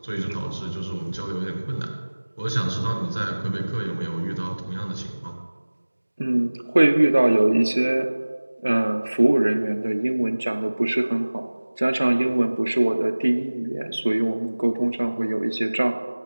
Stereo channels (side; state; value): both; inverted; correlation -1.00